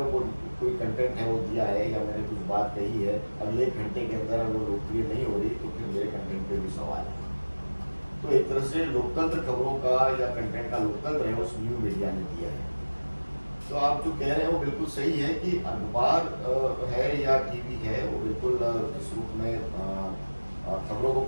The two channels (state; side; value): inverted; both; correlation -1.00